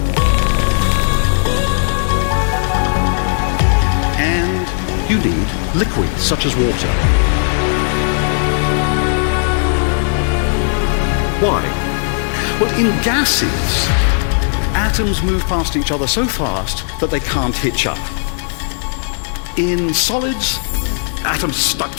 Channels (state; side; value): silent; right; digital silence